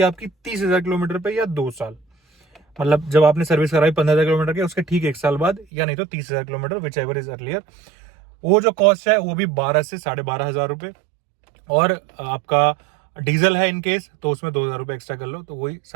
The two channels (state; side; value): drops out; left; at 5.7 s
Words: आपकी 30,000 किलोमीटर पे या 2 साल, मतलब जब आपने सर्विस कराई 15,000 किलोमीटर के उसके ठीक 1 साल बाद, या नहीं तो 30,000 kilometre, which ever is earlier. वो जो कॉस्ट है वो भी 12 से 12,500 रुपए। और आपका डीजल है इनकेस तो उसमें 2,000 रुपए एक्स्ट्रा कर लो, तो वही